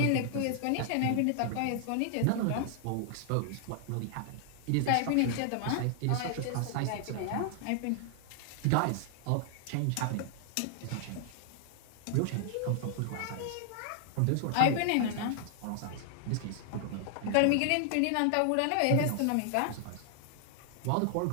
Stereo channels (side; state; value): both; different; correlation 0.00